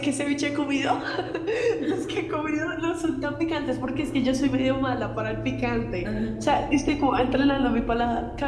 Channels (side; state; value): both; identical; correlation 1.00